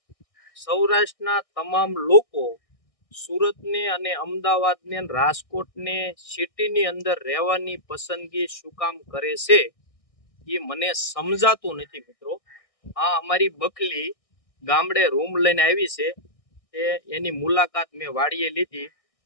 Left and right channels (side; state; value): right; late; 1.6 ms